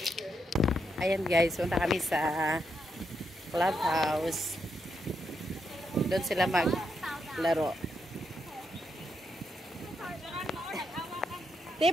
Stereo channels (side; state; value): both; normal; correlation 0.81